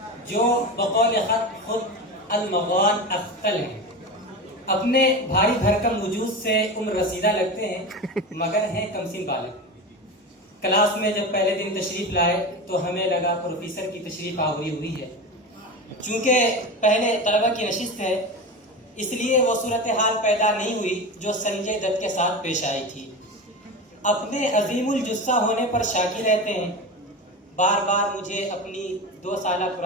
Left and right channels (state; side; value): normal; both; correlation 0.25